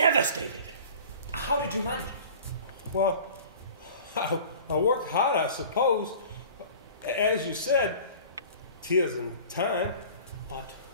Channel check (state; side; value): inverted; both; correlation -0.43